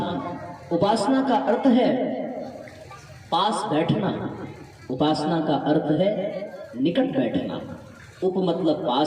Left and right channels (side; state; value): both; identical; correlation 1.00